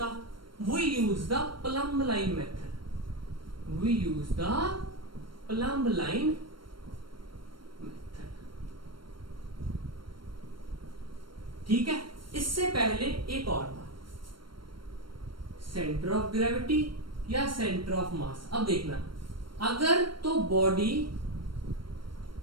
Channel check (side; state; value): left; late; 0.73 ms